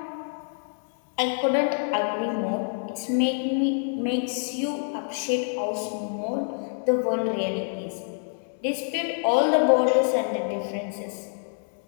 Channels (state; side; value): silent; right; 60 dB below the other